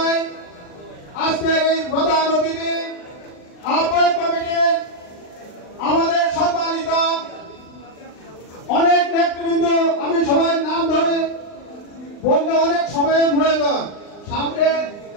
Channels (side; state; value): right; late; 39 ms